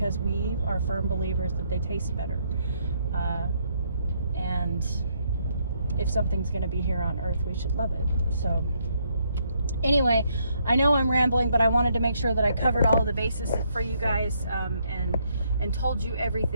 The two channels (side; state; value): both; inverted; correlation -0.73